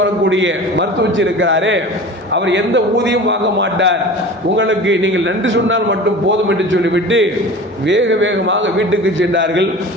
மருத்துவச்சி இருக்கிறாரே அவர் எந்த ஊதியம் வாங்க மாட்டார், உங்களுக்கு நீங்கள் நன்றி சொன்னால் மட்டும் போதும் என்று சொல்லிவிட்டு வேக வேகமாக வீட்டுக்கு சென்றார்கள்.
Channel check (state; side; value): normal; both; correlation 0.37